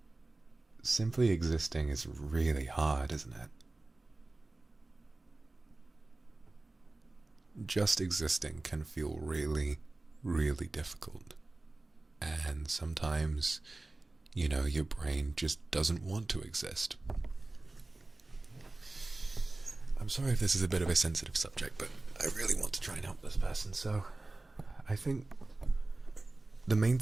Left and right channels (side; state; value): left; quieter; 3.0 dB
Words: simply existing is really hard, isn't it? Just existing can feel really, really difficult. And sometimes, you know, your brain just doesn't want to exist. I'm sorry if this is a bit of a sensitive subject, but I really want to try and help this person, so I think the main